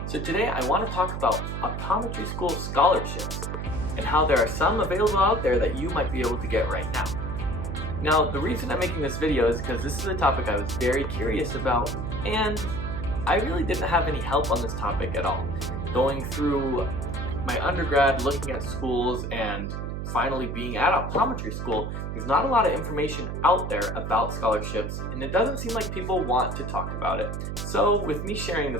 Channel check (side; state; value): right; noise; hum, 4 dB below the sound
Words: So today I want to talk about optometry school scholarships and how there are some available out there that you might be able to get right now. Now, the reason I'm making this video is because this is a topic I was very curious about, and I really didn't have any help on this topic at all. Going through my undergrad, looking at schools, and finally being at optometry school, there's not a lot of information out there about scholarships, and it doesn't seem like people want to talk about it. So with me sharing